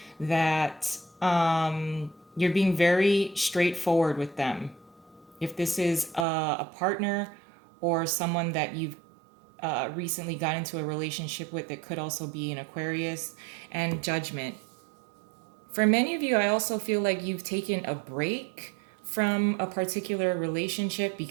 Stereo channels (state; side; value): drops out; left; at 6.2 s